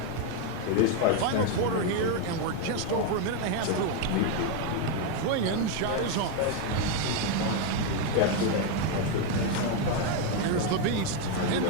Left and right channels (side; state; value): both; different; correlation 0.01